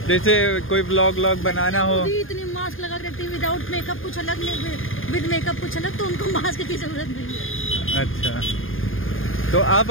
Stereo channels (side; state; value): right; late; 0.59 ms